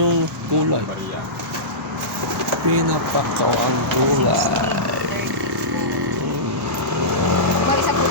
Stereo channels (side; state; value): both; normal; correlation -0.17